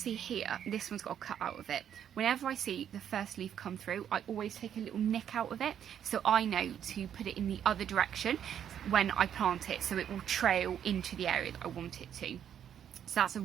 here, this one's got a cut out of it. Whenever I see the first leaf come through, I always take a little nick out of it, so I know to put it in the other direction when I plant it, so it will trail into the area that I want it to. So that's a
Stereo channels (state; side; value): quieter; left; 9.3 dB